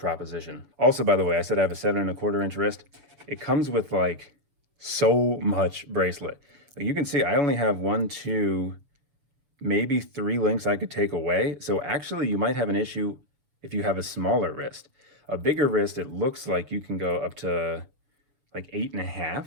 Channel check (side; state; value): left; late; 7.0 ms